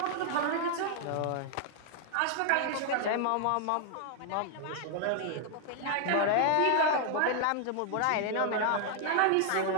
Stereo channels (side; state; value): both; different; correlation 0.00